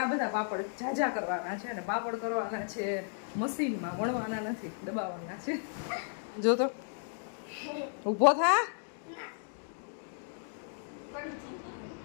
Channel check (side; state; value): right; silent; digital silence